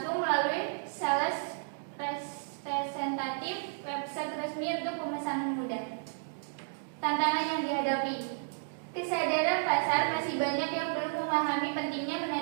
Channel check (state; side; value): silent; left; digital silence